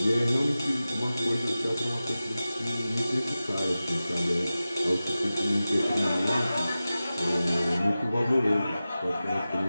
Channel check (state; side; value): inverted; both; correlation -0.95